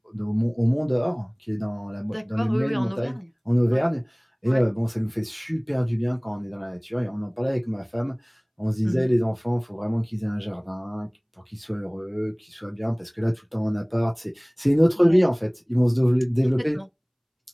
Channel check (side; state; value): both; identical; correlation 1.00